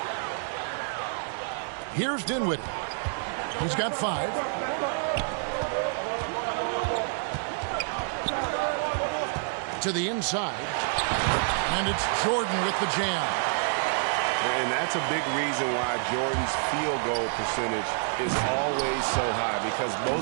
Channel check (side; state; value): left; silent; digital silence